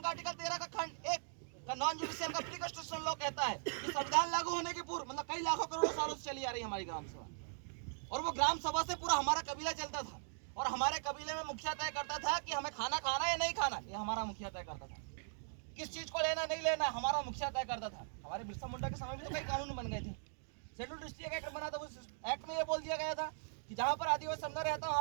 का आर्टिकल 13 का खंड 1 का नॉन जुडिशियल का प्री कॉन्स्टिट्यूशन लॉ कहता है कि संविधान लागू होने के पूर्व मतलब कई लाखों करोड़ों सालों से चली आ रही है हमारी ग्राम सभा, और वो ग्राम सभा से पूरा हमारा कबीला चलता था, और हमारे कबीले में मुखिया तय करता था कि हमें खाना खाना या नहीं खाना, ये हमारा मुखिया तय करता था। किस चीज को लेना नहीं लेना हमारा मुखिया तय करता था। हमारे बिरसा मुंडा के समय में तो कई कानून बन गए थे। शेड्यूल डिस्ट्रिक्ट एक्ट बना था, उस एक्ट में ये बोल दिया गया था कि जहाँ पर आदिवासी समुदाय रहता है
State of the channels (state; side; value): silent; left; digital silence